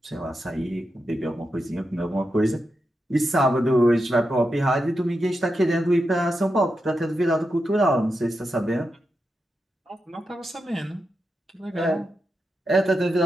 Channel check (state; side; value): normal; both; correlation 0.87